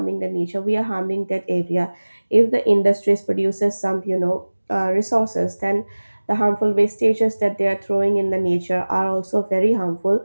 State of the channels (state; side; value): inverted; both; correlation -1.00